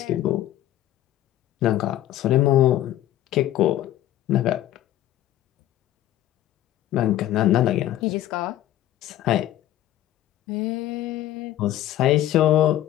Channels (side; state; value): right; quieter; 13.3 dB